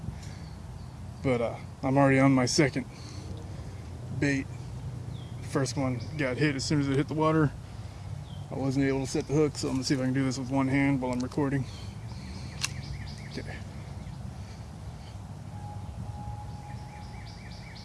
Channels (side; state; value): both; identical; correlation 1.00